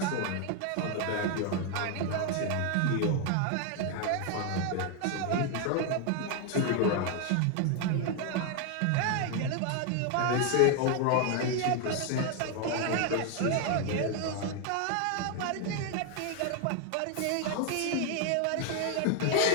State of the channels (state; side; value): different; both; correlation 0.01